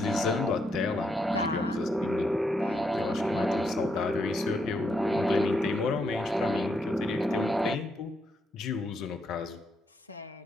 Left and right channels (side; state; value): both; normal; correlation 0.78